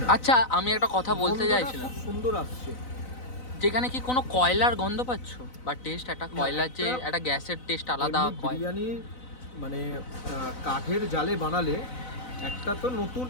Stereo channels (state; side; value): late; right; 4.0 ms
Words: আচ্ছা, আমি একটা কথা বলতে গন্ধটা চাইছিলাম, খুব সুন্দর আসছে। যেখানে কি কোনো কয়লার গন্ধ পাচ্ছ বা টেস্ট? একটা কয়লার যে একটা গ্যাসের টেস্ট আলাদা এমনি বিরিয়ানি মানে কাঠের জালে বানালে একটা তো নতুন